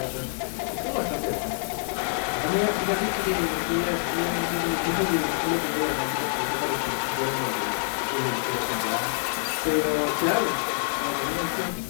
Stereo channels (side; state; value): right; silent; digital silence